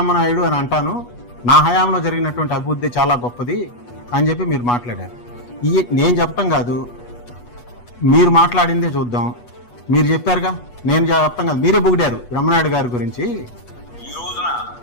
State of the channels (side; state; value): right; late; 8.2 ms